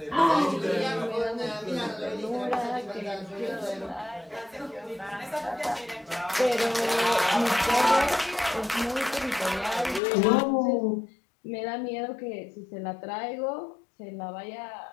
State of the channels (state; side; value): drops out; right; at 10.0 s